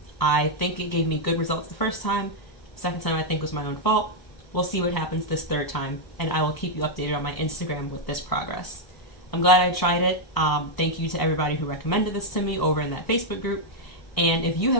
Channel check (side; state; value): right; late; 1.0 ms